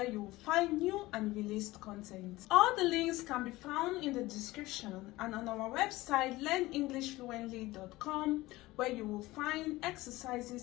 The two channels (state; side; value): quieter; right; 19.0 dB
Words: you will find new and released content. All the links can be found in the description and on our website learnenglishfluently.com, where you will find